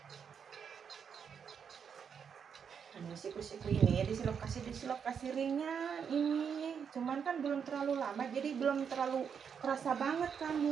Siku-siku ini dislokasi ringnya ini, cuman kan belum terlalu lama, jadi belum terlalu kerasa banget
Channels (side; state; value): left; quieter; 7.1 dB